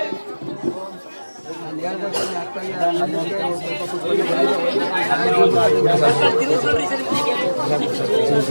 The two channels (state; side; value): inverted; both; correlation -1.00